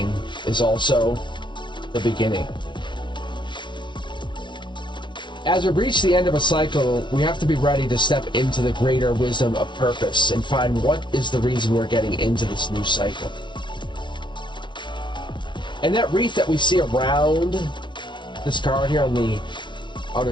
is also the beginning. As we reach the end of a cycle, we have to be ready to step into the greater wisdom of purpose and find what is the reason we're getting into this new cycle. And that wreath that we see around this card here on the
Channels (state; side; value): late; right; 0.23 ms